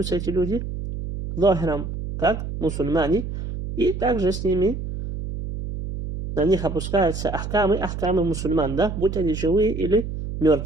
эти люди захиром, как мусульмане, и также с ними на них опускаются ахкамы мусульман, да, будь они живые или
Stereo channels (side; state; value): right; noise; hum, 6 dB below the sound